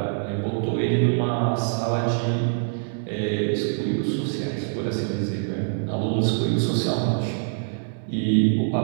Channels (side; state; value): left; silent; digital silence